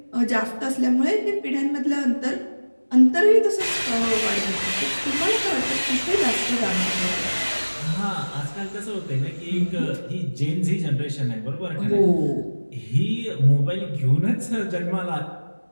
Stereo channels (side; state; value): both; inverted; correlation -1.00